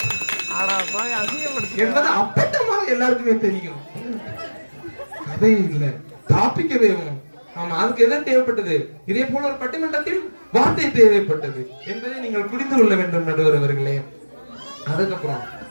என்பது அப்பட்டமாக எல்லாருக்குமே தெரியும். அதே இல்ல, டாபிக்கவே. ஆமா, அதுக்கு எதை தேவைப்பட்டது? இதே போல ஒரு பட்டிமன்றத்தில் வார்த்தை தேவைப்பட்டது என்பதை நீங்கள் புரிந்து கொள்ள வேண்டும் நடுவர் அவர்களே. அதுக்கப்புறம்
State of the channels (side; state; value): both; inverted; correlation -1.00